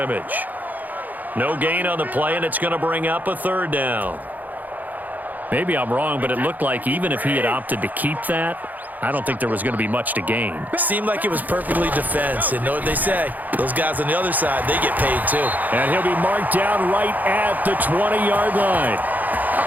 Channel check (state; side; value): late; left; 0.082 ms